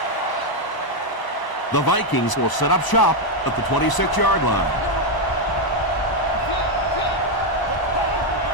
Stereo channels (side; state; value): right; late; 1.0 ms